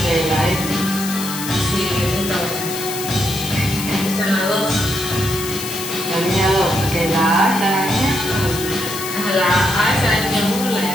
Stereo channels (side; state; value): left; noise; hiss, 7 dB below the sound